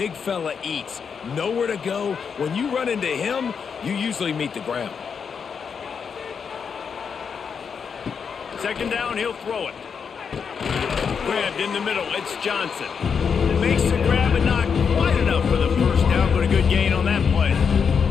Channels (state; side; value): quieter; right; 6.4 dB